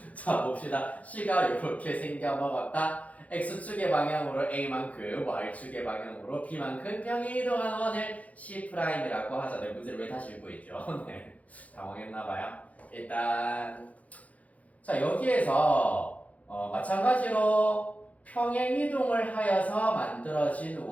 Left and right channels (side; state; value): right; late; 0.069 ms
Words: 자 봅시다. C가 이렇게 생겨 먹었다. X축의 방향으로 A만큼, Y축의 방향으로 B만큼 평행 이동한 원을 C'이라고 하자. 네, 문제를 왜 다시 읽고 있죠? 네, 당황했나봐요. 일단 자 여기에서 마찬가지로 평행 이동을 하여서 만들어진